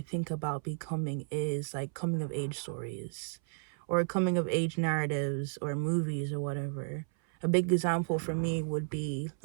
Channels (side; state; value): left; silent; 56 dB below the other